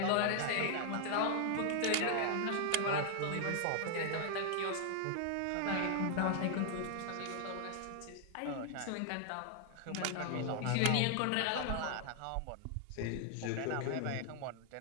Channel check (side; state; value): both; different; correlation 0.00